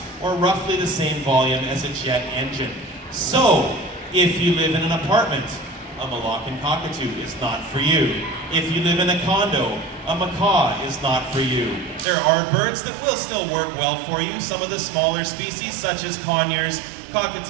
or roughly the same volume as a jet engine. So, if you live in an apartment, a Moluccan cockatoo is not for you. If you live in a condo, a macaw is not for you. There are birds that will still work well for you, some of the smaller species such as conures,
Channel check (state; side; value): drops out; left; at 12.1 s